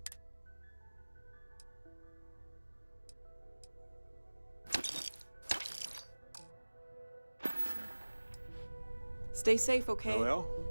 Stay safe, okay? Well,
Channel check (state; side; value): inverted; both; correlation -1.00